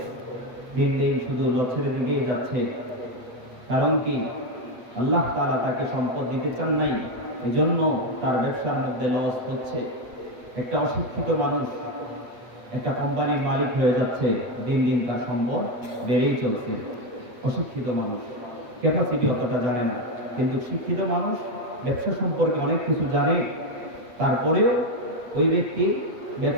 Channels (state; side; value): late; left; 8.2 ms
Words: দিন দিন শুধু লসের দিকেই যাচ্ছে। কারণ কি? আল্লাহ তাআলা তাকে সম্পদ দিতে চান নাই, এজন্য তার ব্যবসার মধ্যে লস হচ্ছে। একটা অশিক্ষিত মানুষ একটা কোম্পানির মালিক হয়ে যাচ্ছে, দিন দিন তার সম্পদ বেড়েই চলছে। অশিক্ষিত মানুষ ক্যাপাসিটি অতটা জানে না, কিন্তু শিক্ষিত মানুষ ব্যবসা সম্পর্কে অনেক কিছু জানে, তারপরেও ওই ব্যক্তি